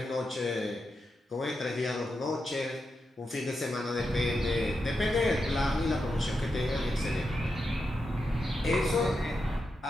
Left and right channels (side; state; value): both; normal; correlation 0.87